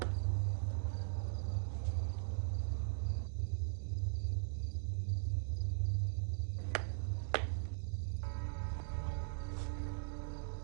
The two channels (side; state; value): left; silent; digital silence